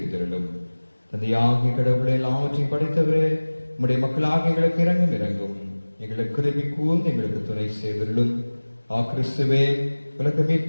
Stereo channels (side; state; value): both; inverted; correlation -1.00